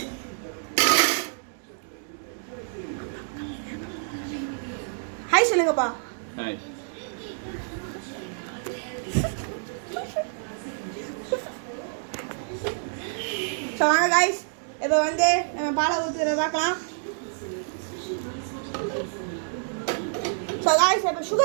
ஹாய் சொல்லுங்கப்பா. ஹாய். ஸோ வாங்க காய்ஸ், இப்போ வந்து நம்ம பாலை ஊற்றுறத பார்க்கலாம். ஸோ காய்ஸ் இப்போ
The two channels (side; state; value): left; silent; 60 dB below the other